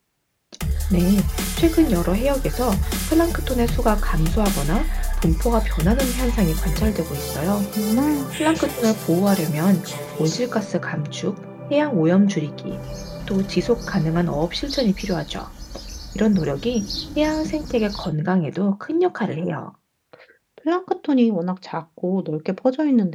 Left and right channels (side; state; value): both; identical; correlation 1.00